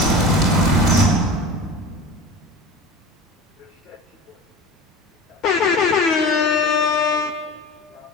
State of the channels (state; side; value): normal; both; correlation 0.34